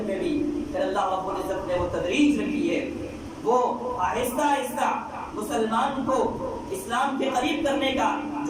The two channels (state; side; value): identical; both; correlation 1.00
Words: میں بھی پھر اللہ رب العزت نے وہ تدریج رکھی ہے، وہ آہستہ آہستہ مسلمان کو اسلام کے قریب کرنے کا